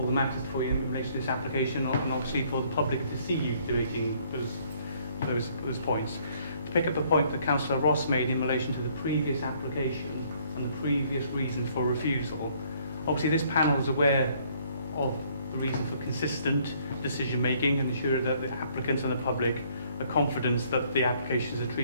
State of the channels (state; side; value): inverted; both; correlation -0.63